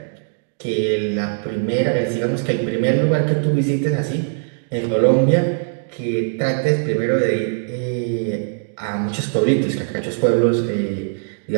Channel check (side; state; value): left; silent; digital silence